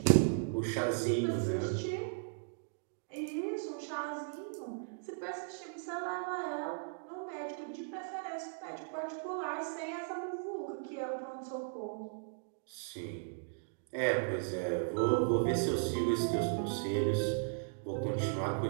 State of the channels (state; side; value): silent; left; digital silence